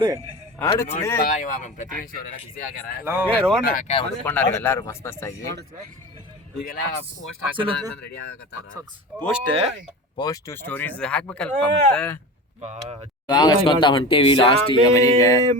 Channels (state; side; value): normal; both; correlation 0.30